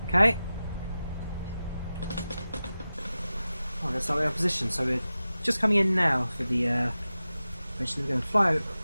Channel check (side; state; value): both; inverted; correlation -0.94